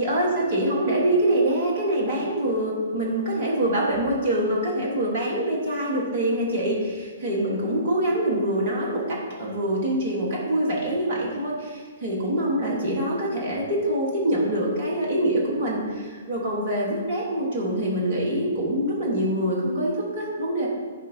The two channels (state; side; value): inverted; both; correlation -0.46